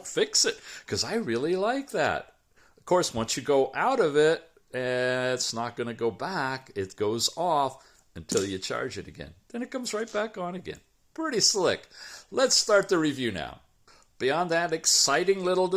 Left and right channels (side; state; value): both; identical; correlation 1.00